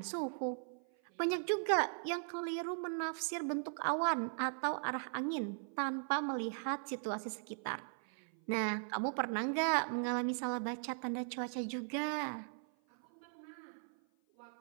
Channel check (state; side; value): silent; left; 52 dB below the other